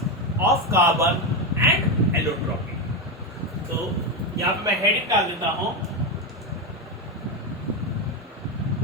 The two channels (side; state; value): both; normal; correlation 0.11